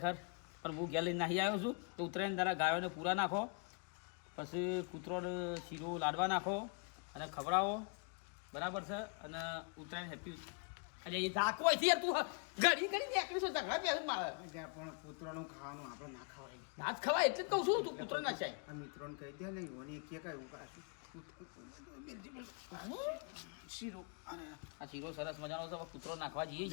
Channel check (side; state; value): right; quieter; 39.5 dB